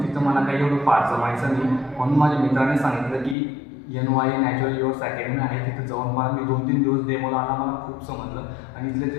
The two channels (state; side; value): drops out; right; at 3.4 s